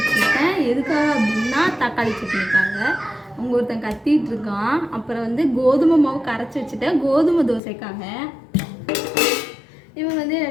எதுக்காக அப்படின்னா தக்காளி சட்னிக்காக. அவங்க ஒருத்தன் கத்திட்டு இருக்கான். அப்புறம் வந்து கோதுமை மாவு கரைச்சி வச்சுட்டேன் கோதுமை தோசைக்காக. இவங்க வந்து என்னை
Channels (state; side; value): drops out; right; at 7.6 s